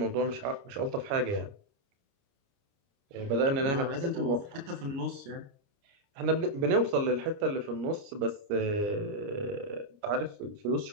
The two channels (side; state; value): left; late; 29 ms